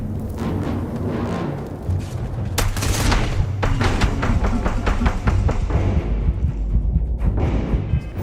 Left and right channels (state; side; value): identical; both; correlation 1.00